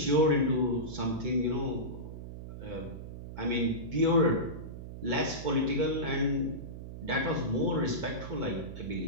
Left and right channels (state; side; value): noise; right; hum, 10 dB below the sound